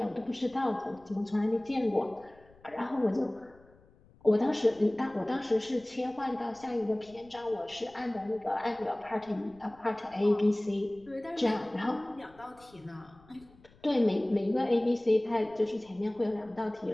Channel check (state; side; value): noise; left; rumble, 27 dB below the sound